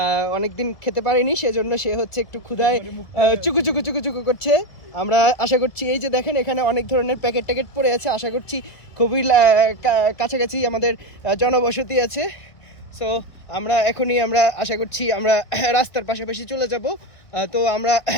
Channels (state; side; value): late; right; 1.5 ms